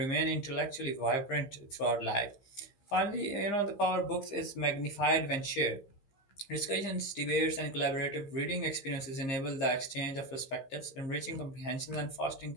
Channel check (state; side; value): late; right; 15 ms